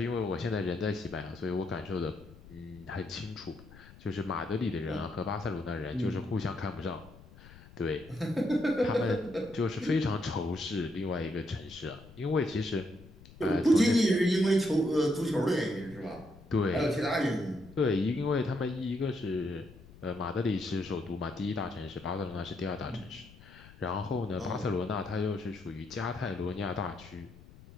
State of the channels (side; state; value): left; noise; rumble, 20 dB below the sound